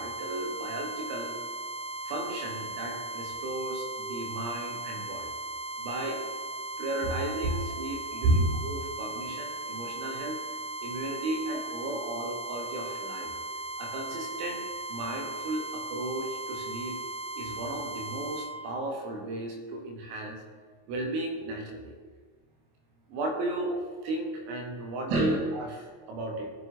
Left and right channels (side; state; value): left; late; 26 ms